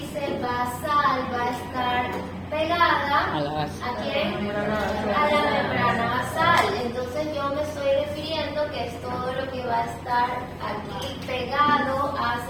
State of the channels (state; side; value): identical; both; correlation 1.00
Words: basal va a estar pegada ¿a quién? A la membrana basal. Entonces yo me estoy refiriendo que es todo lo que va a estar aquí pegado